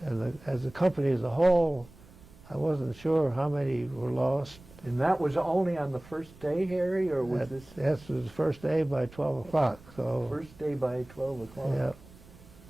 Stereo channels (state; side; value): noise; right; rumble, 22 dB below the sound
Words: And as a company as a whole, I wasn't sure how many were lost. And that was only on the first day, Harry, or was this? Yes, it was the first day by 12 o'clock. So first day by 12 o'clock. Yeah.